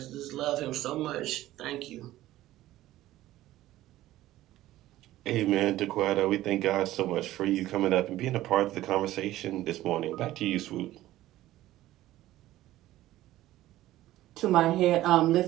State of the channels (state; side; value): quieter; left; 15.2 dB